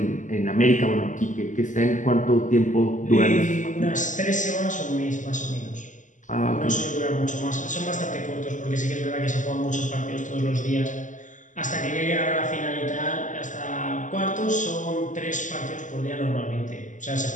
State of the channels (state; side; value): late; right; 0.37 ms